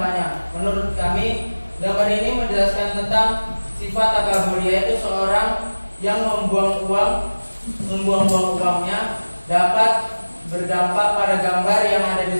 Menurut kami, gambar ini menjelaskan tentang sifat takabur, yaitu seorang yang membuang uangnya dapat berdampak pada gambar yang ada di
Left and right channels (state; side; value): inverted; both; correlation -1.00